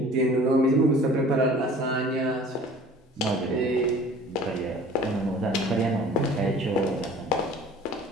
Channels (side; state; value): both; normal; correlation 0.47